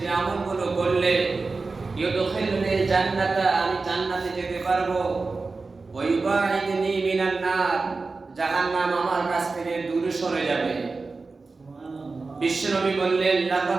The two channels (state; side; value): quieter; left; 3.9 dB